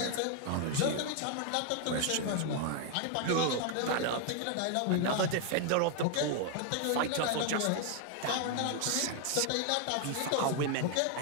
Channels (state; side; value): different; both; correlation 0.01